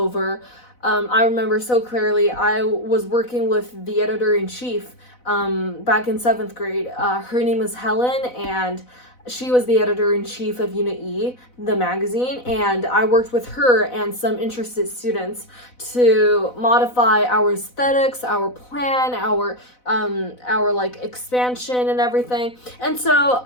I remember so clearly, I was working with the editor-in-chief back in 7th grade. Her name is Helen, and she was the editor-in-chief of Unit E, the magazine, and I worked with her and some interested students to modify our aesthetics, our plan, our like expansion and everything. And so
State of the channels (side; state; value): right; late; 4.0 ms